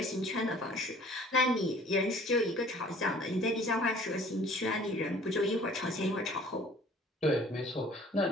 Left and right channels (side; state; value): both; normal; correlation 0.52